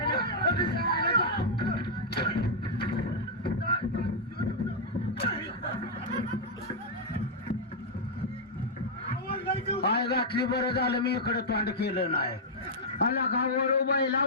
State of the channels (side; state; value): both; normal; correlation -0.06